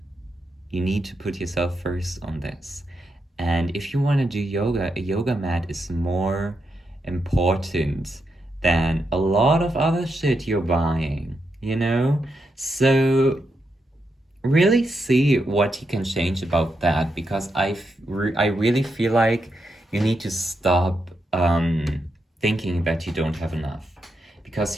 You need to put yourself first on this. And if you want to do yoga, a yoga mat is more important than a lot of other shit you're buying, you know? So really see what you can change about that, because I really feel like you need to stop thinking that you don't have enough,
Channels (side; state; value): both; normal; correlation 0.83